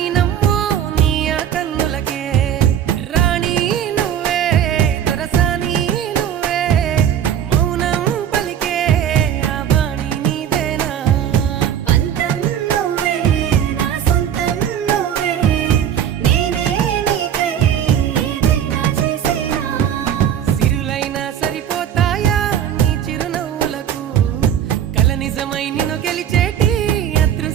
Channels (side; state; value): left; quieter; 9.6 dB